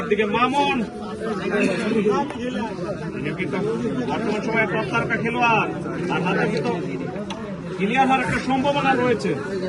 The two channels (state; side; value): identical; both; correlation 1.00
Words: মামুন তিনি কিন্তু বর্তমান সময়ে টপ তারকা খেলোয়াড়, তার হাতে কিন্তু ক্লিয়ার হওয়ার একটা সম্ভাবনা রয়েছে।